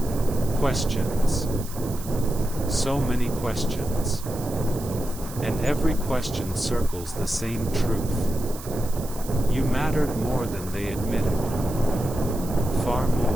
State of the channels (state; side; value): noise; right; hiss, 15 dB below the sound